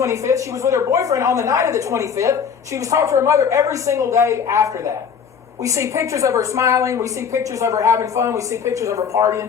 She was with her boyfriend on the night of the 25th. She was talking to her mother every single day after that. We see pictures of her smiling. We see pictures of her having fun. We see pictures of her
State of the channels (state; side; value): quieter; right; 6.9 dB